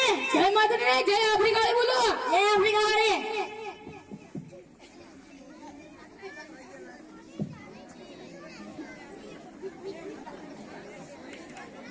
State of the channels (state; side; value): identical; both; correlation 1.00